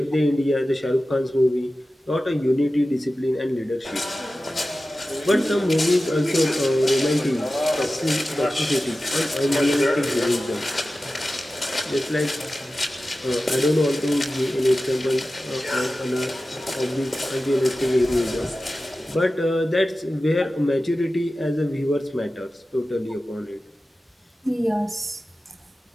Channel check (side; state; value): both; normal; correlation 0.95